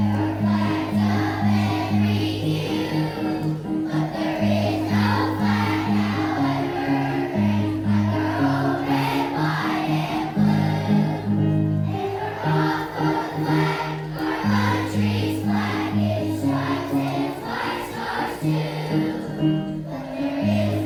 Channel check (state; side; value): identical; both; correlation 1.00